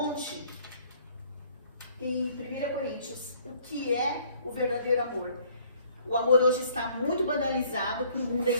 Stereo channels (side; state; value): both; inverted; correlation -0.60